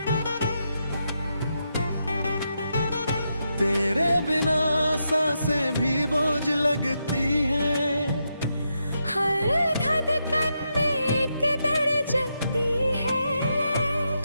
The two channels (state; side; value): inverted; both; correlation -0.84